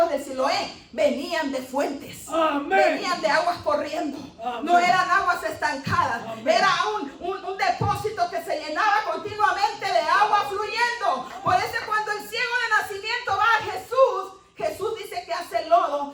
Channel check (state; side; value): identical; both; correlation 1.00